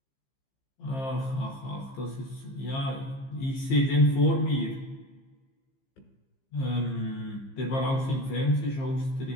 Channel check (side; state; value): right; late; 15 ms